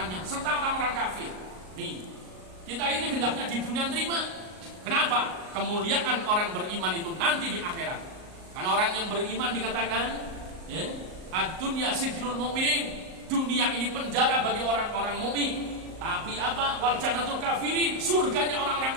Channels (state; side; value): late; left; 38 ms